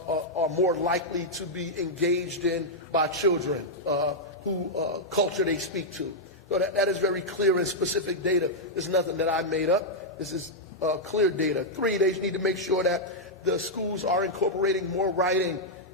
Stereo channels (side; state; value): both; normal; correlation -0.05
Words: more likely to be engaged in by children who culture they speak to. So that is very clear and specific data. This is nothing that I made up. This is clear data. 3, they need to make sure that the schools are incorporating more writing